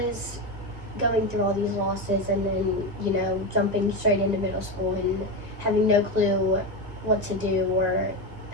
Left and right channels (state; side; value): late; left; 1.6 ms